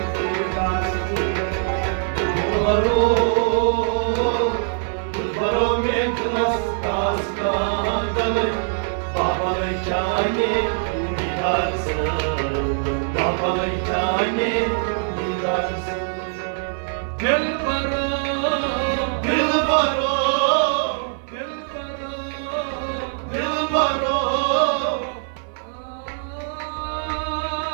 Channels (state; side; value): silent; left; 55 dB below the other